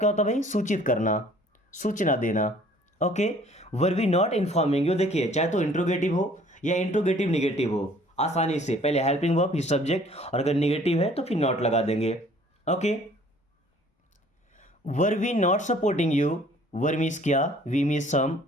होता है भाई, सूचित करना, सूचना देना। Okay, were we not informing you, देखिए चाहे तो इंट्रोगेटिव हो या इंट्रोगेटिव निगेटिव हो, आसानी से पहले हेल्पिंग वर्ब फिर सब्जेक्ट, और अगर निगेटिव है तो फिर नॉट लगा देंगे। Okay, were we not supporting you, were means क्या, वी मीन्स सम,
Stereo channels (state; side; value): normal; both; correlation 0.55